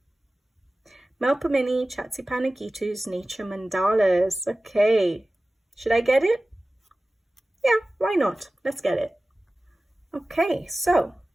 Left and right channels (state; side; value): normal; both; correlation 0.96